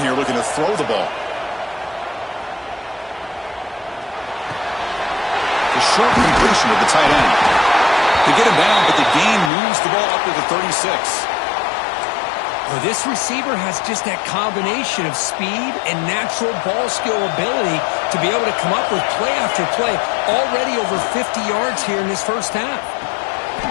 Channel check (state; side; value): drops out; right; at 9.5 s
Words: here, looking to throw the ball. The short completion of the tight end. They get him down, but the gain moves the ball up to the 36. Well, this receiver has just that combination of speed and natural ball skill ability to be able to come up with play after play. Already over 50 yards here in this first half.